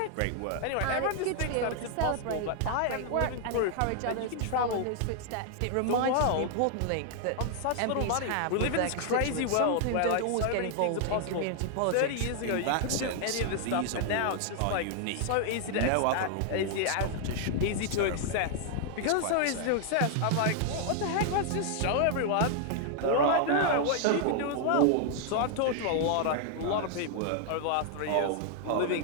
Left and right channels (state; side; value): different; both; correlation 0.00